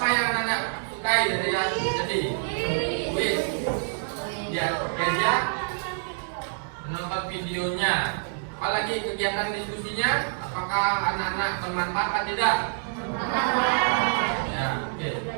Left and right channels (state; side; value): silent; left; 60 dB below the other